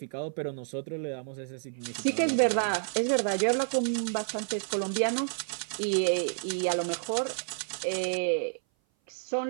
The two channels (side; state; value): left; silent; 56 dB below the other